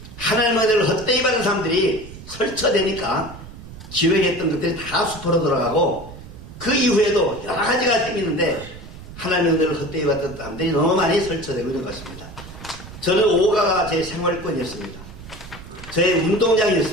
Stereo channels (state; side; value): noise; right; rumble, 15 dB below the sound